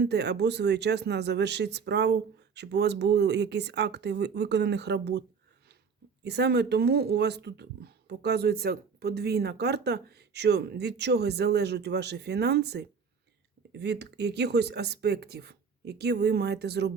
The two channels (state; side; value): quieter; left; 5.8 dB